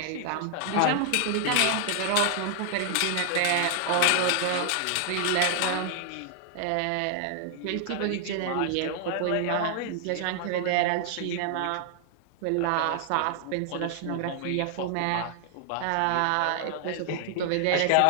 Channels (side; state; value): both; different; correlation 0.00